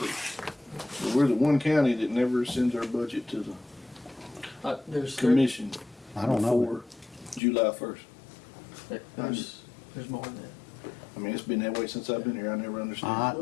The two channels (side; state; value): right; drops out; at 7.4 s